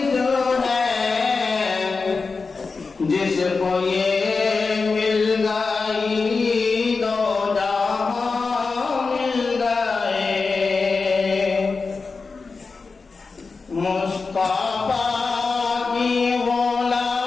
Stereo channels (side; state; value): right; quieter; 4.4 dB